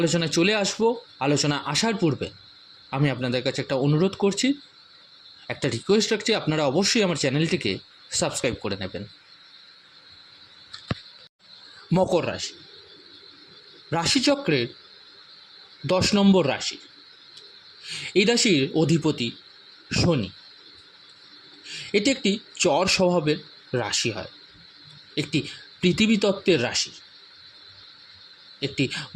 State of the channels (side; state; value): both; identical; correlation 1.00